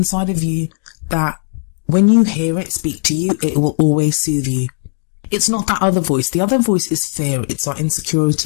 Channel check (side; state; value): right; silent; 55 dB below the other